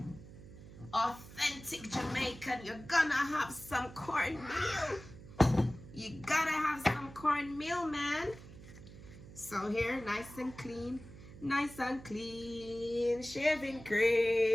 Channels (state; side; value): noise; right; hum, 17 dB below the sound